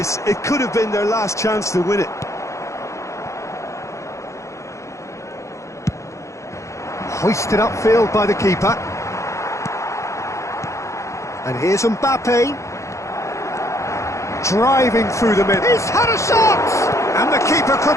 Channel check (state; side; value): late; right; 0.15 ms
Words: It could have been their last chance to win it. Hoisted upfield by the keeper. And here's Mbappe. Driving through the middle. He's had a shot! And the keeper